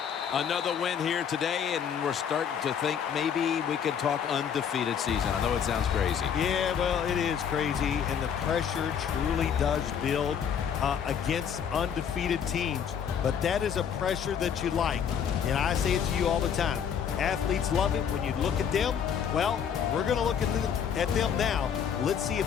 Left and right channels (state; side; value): quieter; right; 7.9 dB